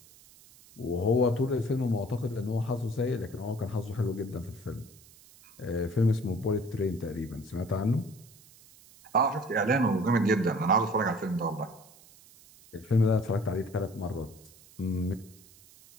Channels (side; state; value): right; noise; hiss, 24 dB below the sound